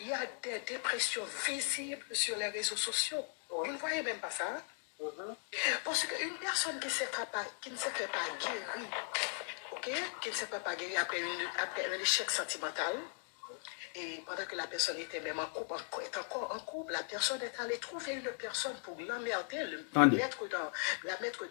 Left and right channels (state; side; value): silent; right; 52 dB below the other